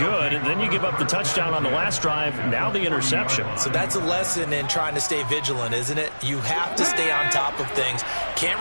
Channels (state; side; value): inverted; both; correlation -1.00